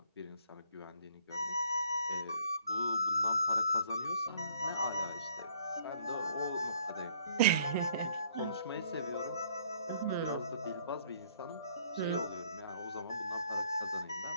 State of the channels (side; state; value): both; inverted; correlation -0.61